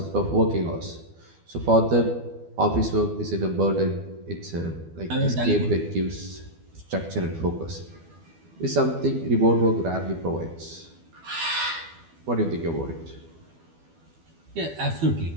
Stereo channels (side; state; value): left; late; 12 ms